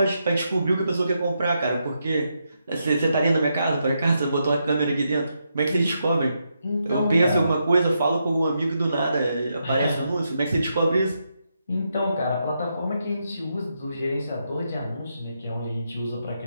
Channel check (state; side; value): inverted; both; correlation -0.82